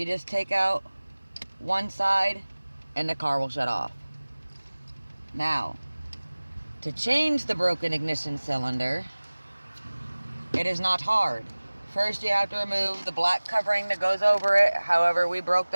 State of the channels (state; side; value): inverted; both; correlation -1.00